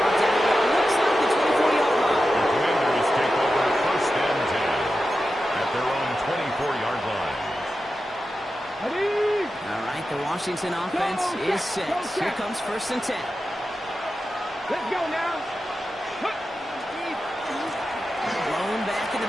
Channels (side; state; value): both; normal; correlation 0.91